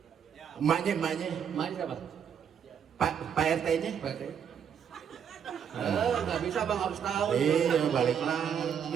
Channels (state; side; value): quieter; left; 7.9 dB